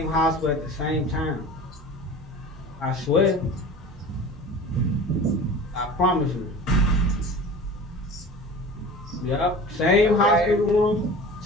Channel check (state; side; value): normal; both; correlation 0.38